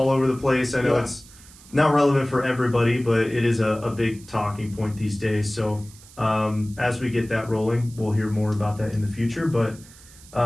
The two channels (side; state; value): right; noise; hiss, 22 dB below the sound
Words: over the place. I know it's not relevant for everybody, but it is a big talking point these days. So as we get that rolling, we'll hear more about that in the future. But